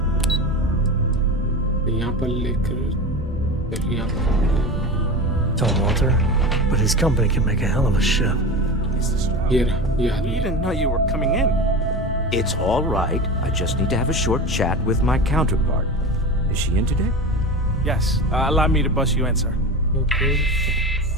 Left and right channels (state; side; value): normal; both; correlation 0.27